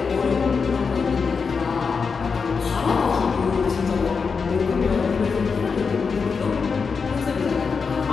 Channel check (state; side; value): quieter; right; 5.3 dB